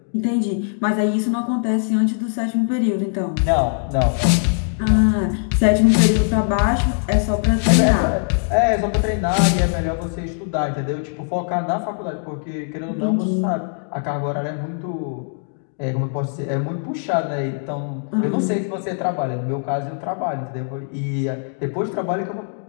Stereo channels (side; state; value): right; silent; 65 dB below the other